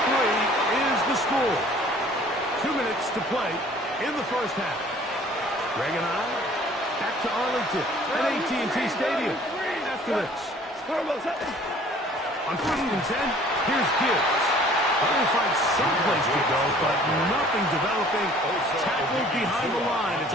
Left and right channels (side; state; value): both; normal; correlation 0.53